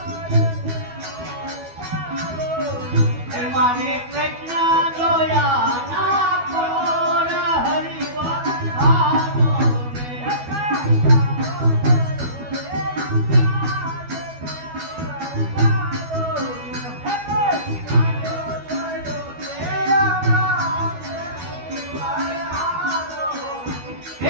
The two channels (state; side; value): late; left; 12 ms